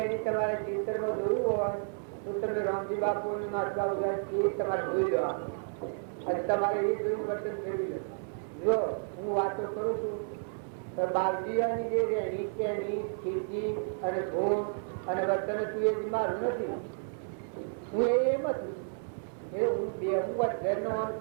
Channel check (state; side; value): silent; left; digital silence